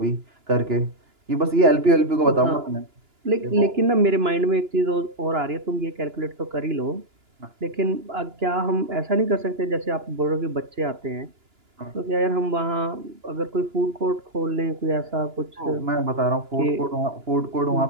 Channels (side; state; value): left; late; 2.9 ms